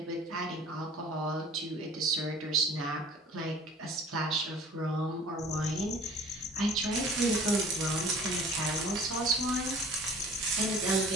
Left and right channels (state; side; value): normal; both; correlation 0.48